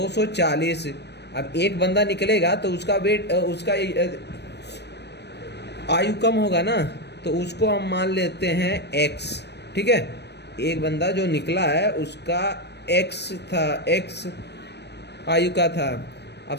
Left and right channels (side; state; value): right; late; 0.49 ms